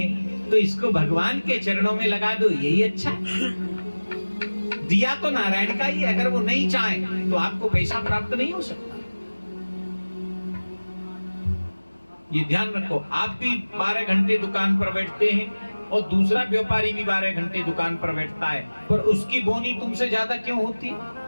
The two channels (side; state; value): both; inverted; correlation -1.00